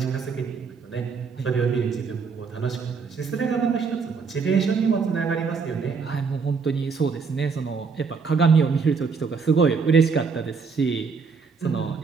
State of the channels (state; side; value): quieter; left; 5.2 dB